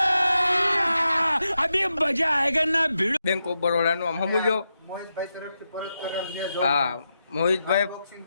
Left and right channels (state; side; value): inverted; both; correlation -0.87